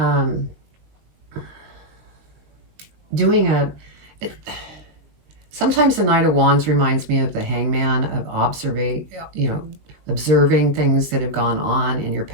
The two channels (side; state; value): left; late; 19 ms